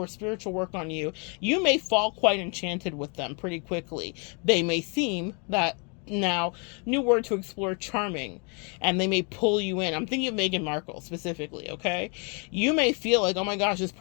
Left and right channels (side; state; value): right; quieter; 35.8 dB